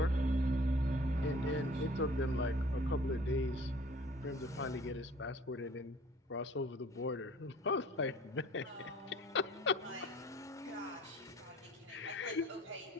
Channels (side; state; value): both; normal; correlation 0.51